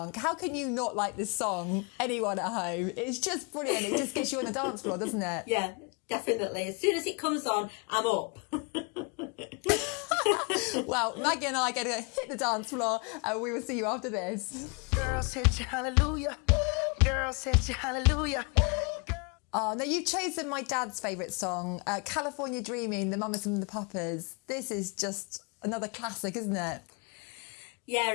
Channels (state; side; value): quieter; right; 32.3 dB